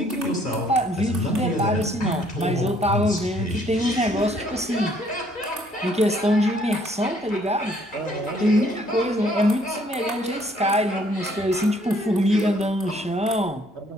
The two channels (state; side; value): normal; both; correlation 0.64